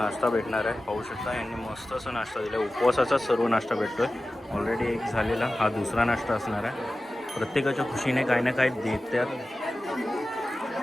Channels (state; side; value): normal; both; correlation 0.95